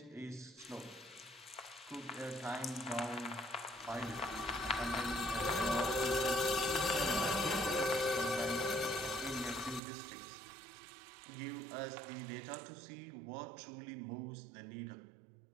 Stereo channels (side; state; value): left; drops out; at 9.8 s